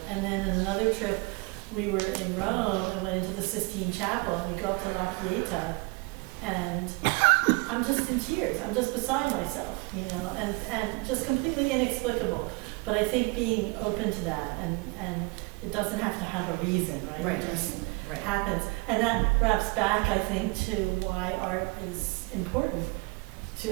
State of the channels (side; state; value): left; quieter; 28.2 dB